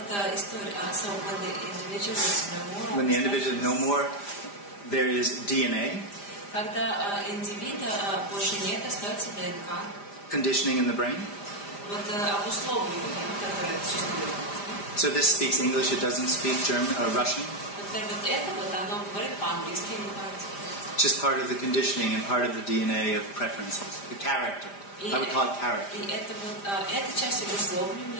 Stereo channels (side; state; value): right; late; 5.0 ms